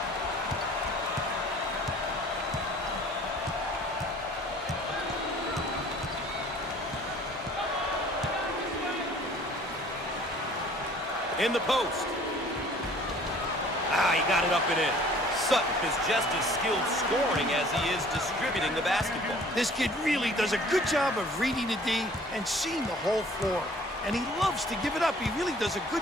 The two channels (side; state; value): both; normal; correlation 0.52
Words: In the post. He got it up and in. Sutton is just as skilled scoring as he is distributing the basketball. This kid really does a good job of reading the D and seeing the whole floor. And he loves to give it up. He really does a